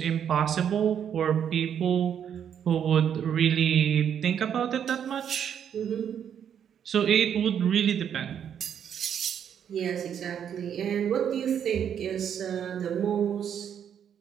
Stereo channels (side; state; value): left; quieter; 8.7 dB